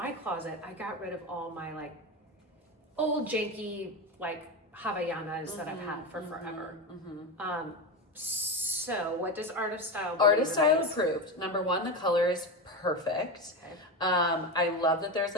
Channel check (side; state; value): both; normal; correlation 0.18